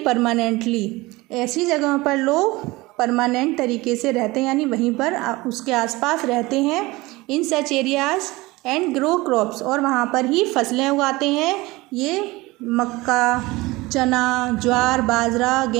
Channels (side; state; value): left; quieter; 21.2 dB